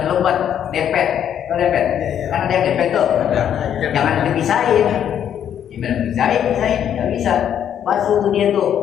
lebat, dempet, dempet, kan ada yang dempet tuh, jangan dipisahin, gimana pisahin, nggak bisa. Basuh tuh dia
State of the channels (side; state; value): right; quieter; 9.5 dB